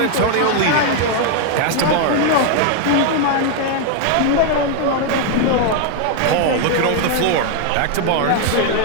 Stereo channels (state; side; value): different; both; correlation 0.00